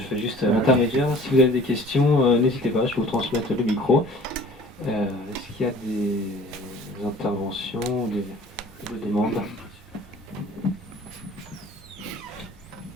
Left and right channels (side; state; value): both; normal; correlation 0.48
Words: fais juste l'intermédiaire. Si vous avez des questions, n'hésitez pas, je vais vous transmettre le micro. Est-ce qu'il y a des interventions, des demandes?